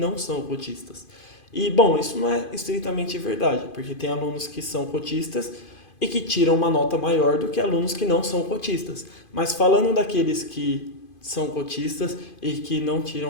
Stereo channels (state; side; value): late; right; 2.5 ms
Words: são cotistas. E, bom, isso não é estritamente verdade, porque tem alunos que são cotistas e que tiram uma nota maior do que alunos que não são cotistas. Mas falando daqueles que são cotistas e que não